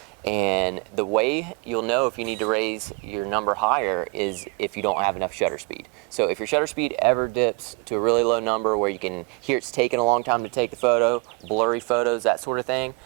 And the way you'll know if you need to raise your number higher is if you don't have enough shutter speed. So if your shutter speed ever dips to a really low number where you can hear it's taking a long time to take the photo, blurry photos, that sort of thing,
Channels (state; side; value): quieter; left; 31.1 dB